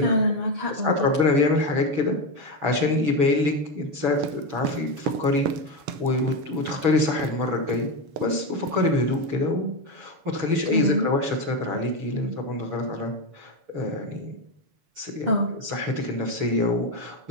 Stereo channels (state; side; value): late; left; 7.0 ms